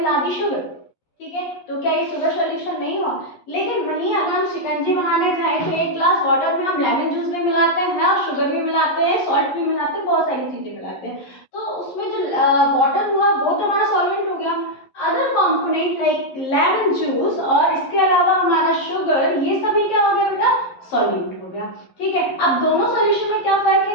दी शुगर। ठीक है, तो क्या ये शुगर सॉल्यूशन नहीं हुआ? लेकिन वहीं अगर हम शिकंजी बनाने जाएं तो एक ग्लास वाटर में हम लेमन जूस भी मिलाते हैं और शुगर भी मिलाते हैं, सॉल्ट भी मिलाते हैं, बहुत सारी चीजें मिलाते हैं, तो उसमें जो वाटर हुआ वो तो हमारा सॉल्वेंट हो गया। Other component like lemon juice और इसके अलावा हमारा शुगर, ये सभी क्या हो गया बेटा? सॉल्यूट हो गया। ठीक है, अब दोनों सॉल्यूशन में क्या फर्क है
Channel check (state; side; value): late; right; 11 ms